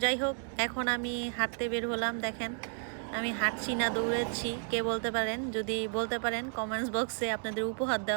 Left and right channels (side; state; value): left; silent; 56 dB below the other